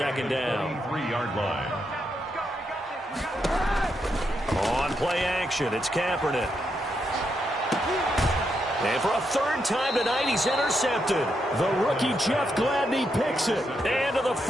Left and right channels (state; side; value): normal; both; correlation 0.81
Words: down. 3-yard line. On play action, it's Kaepernick. And for a third time tonight, he's intercepted. The rookie Jeff Gladney picks it. And to the